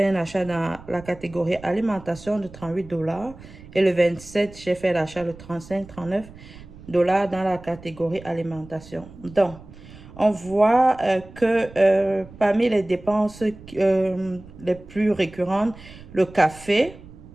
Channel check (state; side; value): noise; right; rumble, 19 dB below the sound